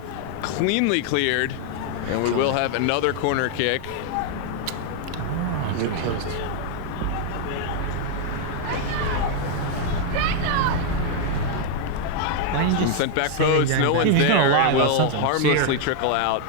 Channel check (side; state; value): both; different; correlation 0.00